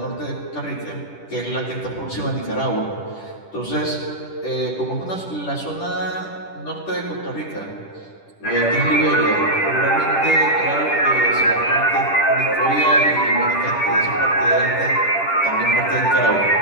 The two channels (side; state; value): right; late; 10 ms